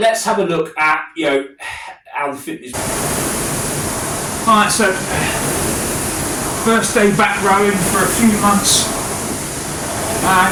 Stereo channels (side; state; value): both; identical; correlation 1.00